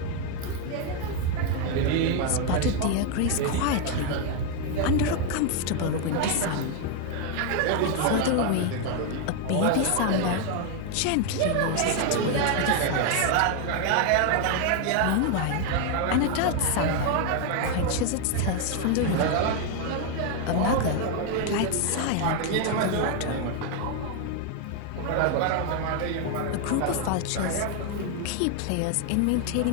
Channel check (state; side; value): different; both; correlation 0.01